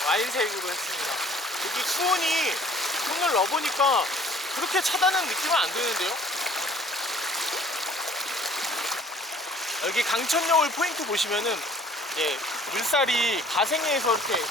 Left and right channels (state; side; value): normal; both; correlation 0.55